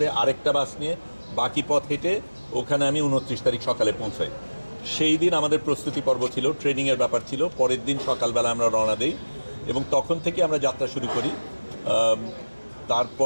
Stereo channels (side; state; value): both; inverted; correlation -1.00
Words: আরেকটা বাস নিয়ে বাকি পথ হেঁটে ওখানে আমি 29 তারিখ সকালে পৌঁছাই। সেই দিন আমাদের প্রস্তুতি পর্ব ছিল, ট্রেনিংয়ের ব্যাপার ছিল। পরের দিন সকালবেলা আমরা রওনা দিই এবং তখন থেকে আমরা যাত্রা শুরু করি।